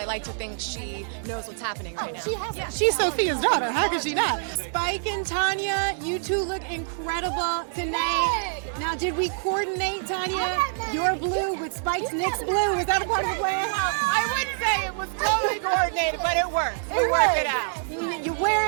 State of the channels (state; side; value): silent; left; digital silence